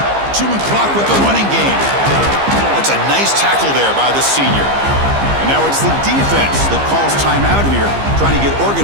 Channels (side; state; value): left; late; 15 ms